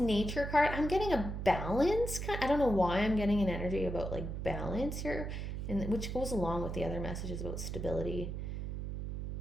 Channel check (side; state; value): right; noise; hum, 4 dB below the sound